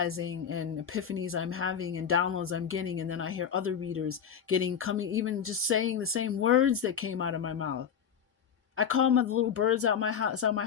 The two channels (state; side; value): quieter; right; 7.7 dB